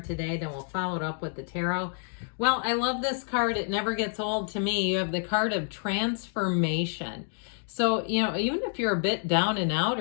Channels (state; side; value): silent; right; 59 dB below the other